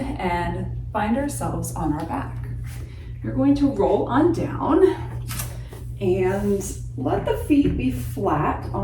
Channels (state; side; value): identical; both; correlation 1.00